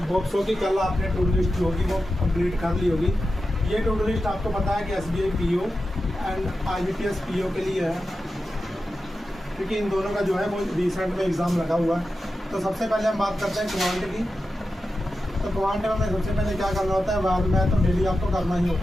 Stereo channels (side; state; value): both; normal; correlation 0.91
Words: होप सो कि कल आपने टू डू लिस्ट जो होगी वो कंप्लीट कर ली होगी। ये टू डू लिस्ट आपको पता है कि SBI PO and IBPS PO के लिए है, क्योंकि इन दोनों का जो है वो रिसेंट में एग्ज़ाम लगा हुआ है। तो सबसे पहले हम बात करते हैं क्वांट की। तो क्वांट में सबसे पहले क्या करना होता है, बाद में तो डेली आपको करना ही